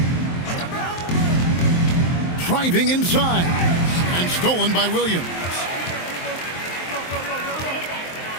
Driving inside and stolen by Williams.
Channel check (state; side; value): late; right; 23 ms